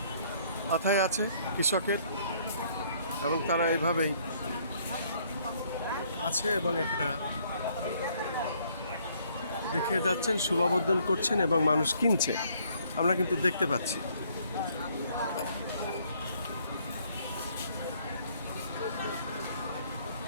মাথায় আছে কৃষকের এবং তারা এভাবেই আছে এবং এটা দেখে যাচ্ছেন, শুভাবর্ধন করছেন এবং মানুষ কিনছে, আমরা কিন্তু দেখতে পাচ্ছি।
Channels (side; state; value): both; inverted; correlation -0.64